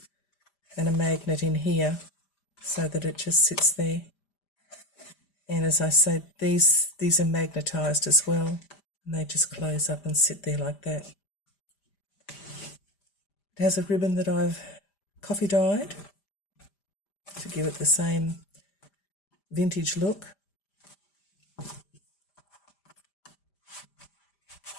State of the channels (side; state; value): right; late; 5.0 ms